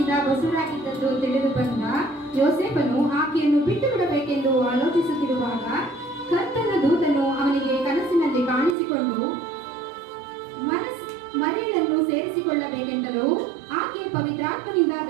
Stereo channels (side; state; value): left; drops out; at 8.8 s